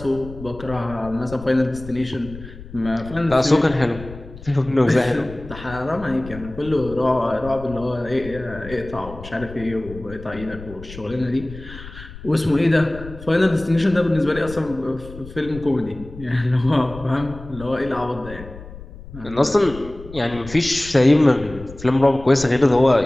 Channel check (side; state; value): left; noise; rumble, 15 dB below the sound